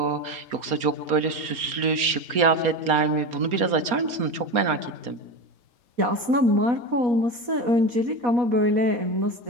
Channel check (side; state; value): left; late; 4.2 ms